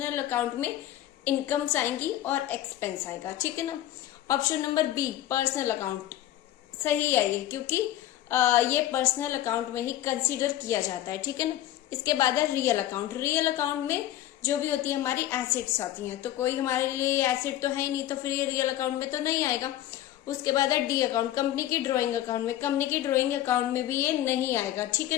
अकाउंट में इनकम्स आएंगी और एक्सपेंस आएगा। ठीक है ना, option number B personal account सही है ये, क्योंकि ये पर्सनल अकाउंट में ही कंसीडर किया जाता है। ठीक है ना, इसके बाद है रियल अकाउंट। रियल अकाउंट में जो भी होती है हमारी एसेट्स आती हैं, तो कोई हमारे लिए एसेट तो है ही नहीं, तो फिर ये रियल अकाउंट में तो नहीं आएगा। उसके बाद है डी अकाउंट, कंपनी की ड्रॉइंग अकाउंट में, कंपनी की ड्रॉइंग अकाउंट में भी ये नहीं आएगा। ठीक है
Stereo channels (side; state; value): right; quieter; 13.4 dB